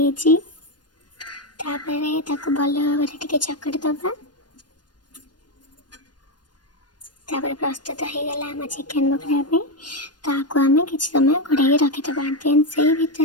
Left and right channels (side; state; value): right; late; 0.70 ms